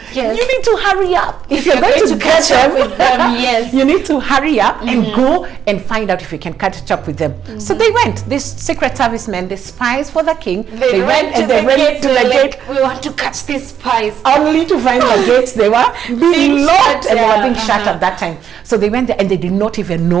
You need to hurry up if you're going to catch up with them. You need to hurry up and go and find out if you can catch up with them. So they went, these secret servicemen, the spies for the king, they went and they went to the gate. We want to catch these spies, only to find the gates they were being locked and they were being shut at that time. So they went there and they did not even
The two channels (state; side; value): quieter; left; 8.6 dB